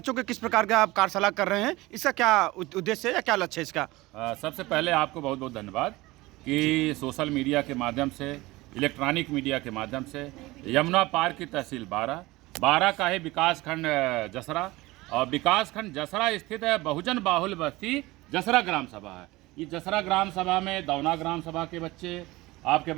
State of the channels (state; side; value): quieter; left; 20.3 dB